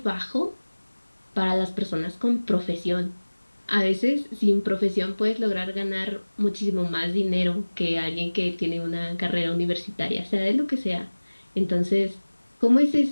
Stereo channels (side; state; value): both; inverted; correlation -1.00